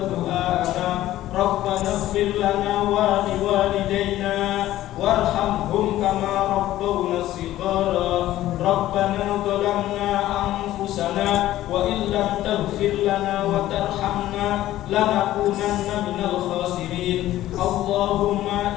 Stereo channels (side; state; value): right; quieter; 14.4 dB